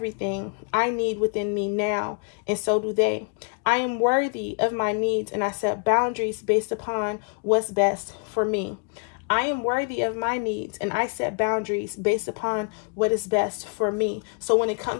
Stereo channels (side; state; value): right; quieter; 39.5 dB